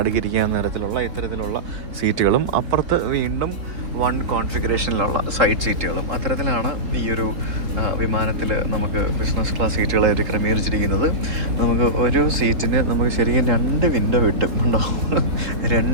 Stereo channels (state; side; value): late; left; 3.7 ms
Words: തരത്തിലുള്ള ഇത്തരത്തിലുള്ള സീറ്റുകളും, അപ്പുറത്ത് വീണ്ടും 1 കോൺഫിഗറേഷനിലുള്ള സൈഡ് സീറ്റുകളും, അത്തരത്തിലാണ് ഈ ഒരു വിമാനത്തിൽ നമുക്ക് ബിസിനസ് ക്ലാസ് സീറ്റുകളായിട്ട് ക്രമീകരിച്ചിരിക്കുന്നത്. നമുക്ക് ഒരു സീറ്റിന് നമുക്ക് ശരിക്കും 2 വിൻഡോ കിട്ടും, ഉണ്ടോ?